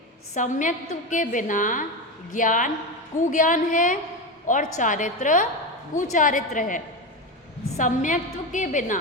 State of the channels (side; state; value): both; normal; correlation 0.18